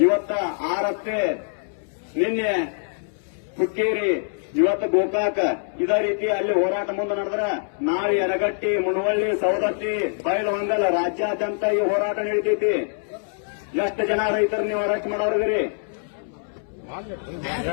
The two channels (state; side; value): silent; right; 63 dB below the other